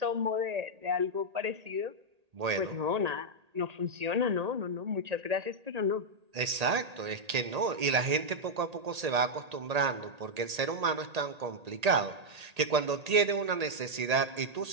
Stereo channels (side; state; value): left; late; 1.8 ms